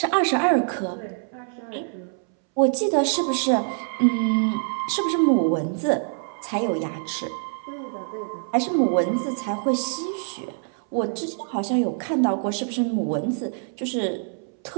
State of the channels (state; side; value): silent; left; 62 dB below the other